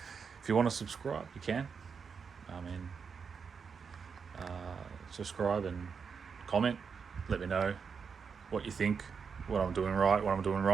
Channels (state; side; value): quieter; left; 5.9 dB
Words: want to subscribe, you can. I mean, subscribe and comment. Let me know what you think, what I'm doing right, what I'm doing